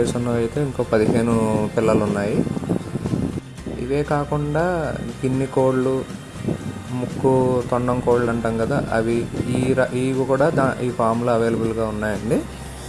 ఉన్నవి అయితే ఇంకో 15 పిల్లలు ఉన్నాయి. ఇవే కాకుండా గిన్నె కోళ్ళు, ముక్కు తొండం కోళ్ళు అంటాం కదా, అవి ఇవి కూడా ఈ ఫామ్లో అవైలబుల్గా ఉన్నాయండి.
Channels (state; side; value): identical; both; correlation 1.00